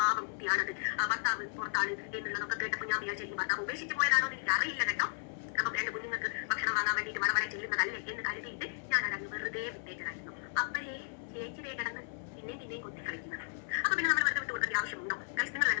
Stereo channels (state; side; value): silent; right; digital silence